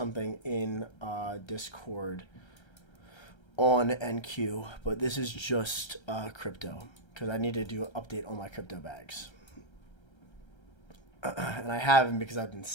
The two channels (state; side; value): late; right; 1.3 ms